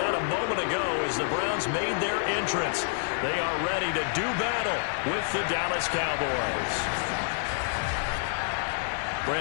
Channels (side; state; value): right; silent; digital silence